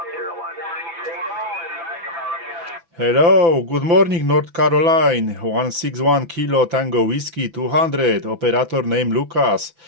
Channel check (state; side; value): late; left; 6.0 ms